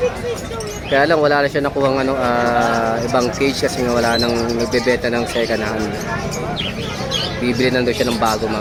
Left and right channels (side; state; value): both; identical; correlation 1.00